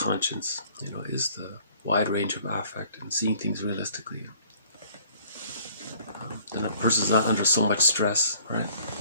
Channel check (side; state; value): both; inverted; correlation -0.56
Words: is the wide range of affect and seeing things realistically. Then a person's not under so much stress, right?